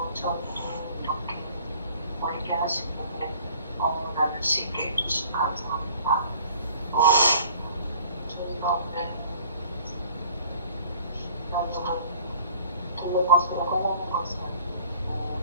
저도 이렇게 어렵게 하시고 나눌 수 있게 해주시면 감사합니다. 저희가 오늘 나도 돌로 것으로 하려는 것은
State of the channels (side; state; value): both; inverted; correlation -0.52